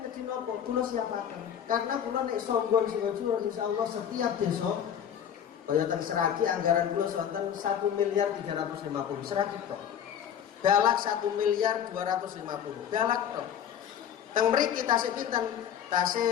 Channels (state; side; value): quieter; right; 9.1 dB